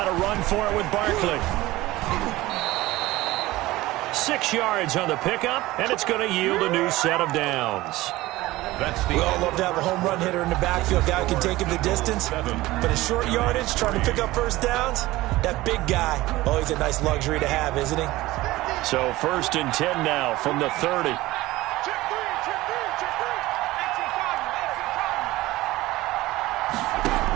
to run for it with Barkley. 6 yards on the pickup, and it's going to yield a new set of downs. We all love to have a home run hitter in the backfield, guy who can take him the distance. But in short yardage, trying to pick up first downs, that big guy, always a nice luxury to have, isn't he? So 1st and 10 now from the 30.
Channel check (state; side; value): quieter; left; 18.2 dB